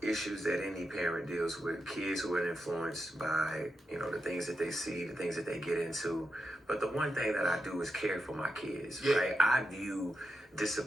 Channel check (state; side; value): normal; both; correlation 0.87